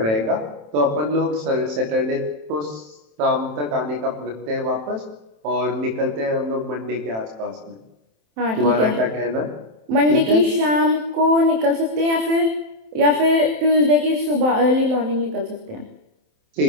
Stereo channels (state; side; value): late; left; 27 ms